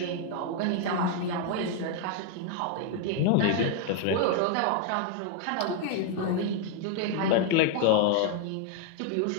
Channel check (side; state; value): both; different; correlation 0.00